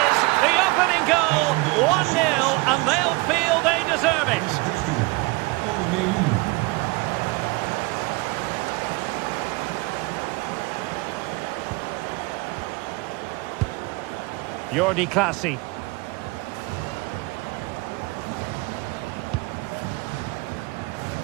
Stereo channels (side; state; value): left; quieter; 23.9 dB